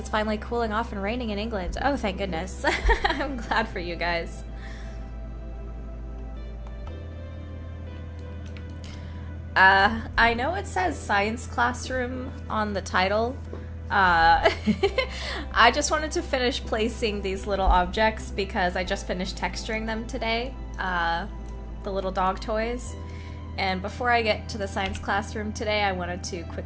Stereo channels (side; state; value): both; identical; correlation 1.00